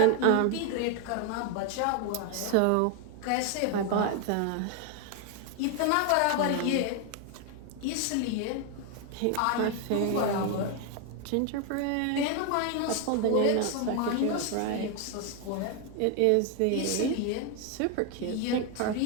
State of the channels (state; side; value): different; both; correlation 0.01